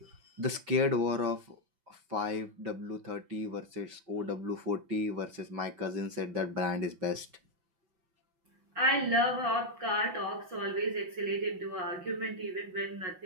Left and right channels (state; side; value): late; left; 6.0 ms